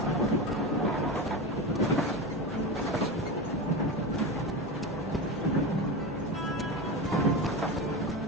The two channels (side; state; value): both; normal; correlation 0.21